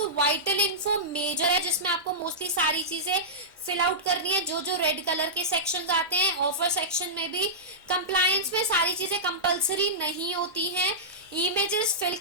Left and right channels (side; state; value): both; normal; correlation -0.15